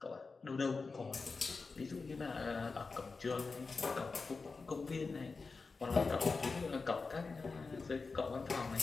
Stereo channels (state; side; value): quieter; right; 4.3 dB